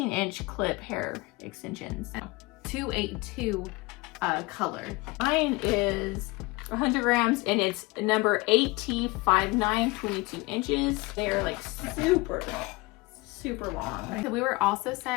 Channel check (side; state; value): right; quieter; 23.8 dB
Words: clip hair extensions. 282 color. Mine is 100 grams and it's number AT59, 22 inches. They are like super long. So we were also